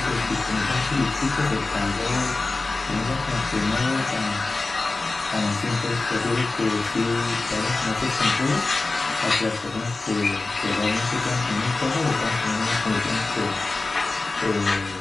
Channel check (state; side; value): quieter; right; 3.4 dB